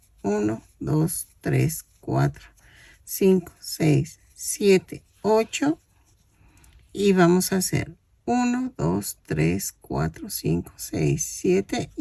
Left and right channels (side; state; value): both; identical; correlation 1.00